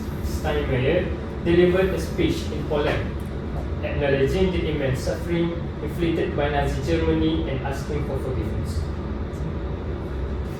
Steinmeier delivered a speech in Poland, acknowledging the immense suffering inflicted by Nazi Germany and asking for forgiveness.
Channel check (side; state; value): both; identical; correlation 1.00